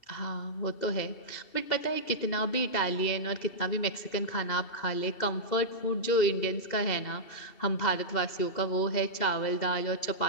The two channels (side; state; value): right; late; 2.7 ms